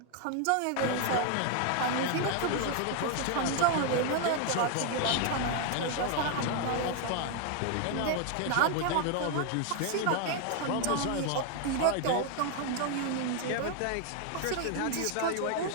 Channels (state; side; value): different; both; correlation 0.01